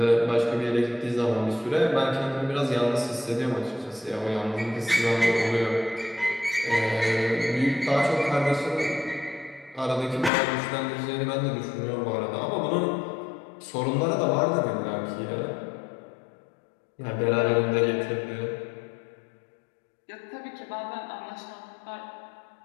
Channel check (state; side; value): drops out; right; at 10.3 s